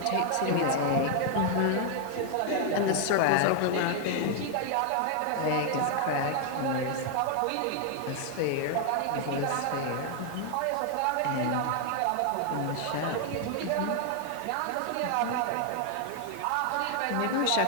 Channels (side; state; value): both; different; correlation 0.00